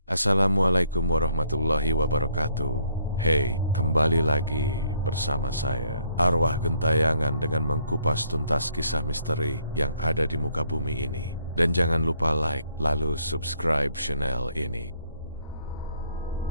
Assalamualaikum warahmatullahi wabarakatuh. Hey, kembali lagi bersama saya, Arwah Gentayangan, dengan mengkupas tuntas kisah misteri yang ada di muka bumi ini. Dan jangan lupa like, lalu subscribe channel ini.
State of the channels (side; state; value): both; inverted; correlation -0.69